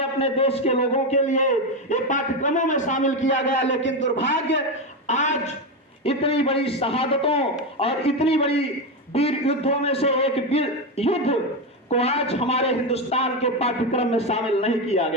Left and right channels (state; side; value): normal; both; correlation 0.12